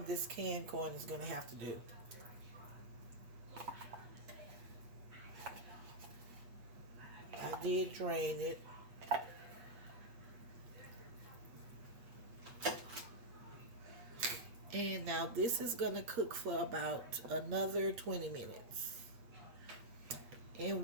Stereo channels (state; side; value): late; left; 8.3 ms